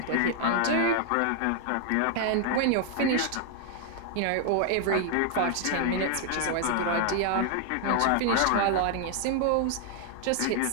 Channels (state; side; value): different; both; correlation 0.00